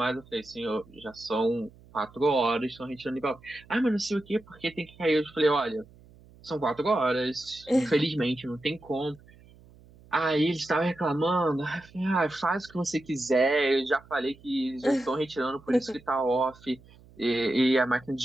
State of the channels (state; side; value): noise; right; hum, 25 dB below the sound